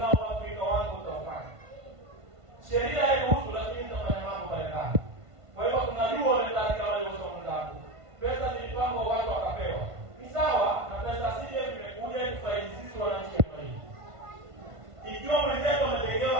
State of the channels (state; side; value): late; left; 1.5 ms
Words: Afrika wangu utafanya. Sheria hairuhusu lakini tutafanya mambo mbalimbali. Kwa hivyo tunajua wale katika wale wasomao. Pesa zilipangwa watu wakapewa. Ni sawa na pesa CDF imekuja kufaidi sisi wananchi wa hii. Ikiwa mwenzetu